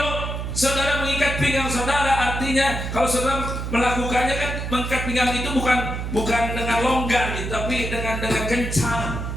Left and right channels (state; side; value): noise; right; hum, 4 dB below the sound